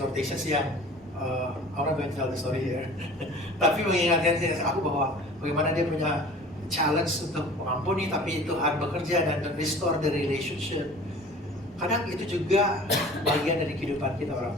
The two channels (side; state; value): both; normal; correlation 0.44